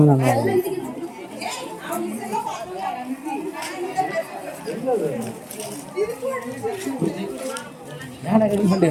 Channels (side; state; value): both; identical; correlation 1.00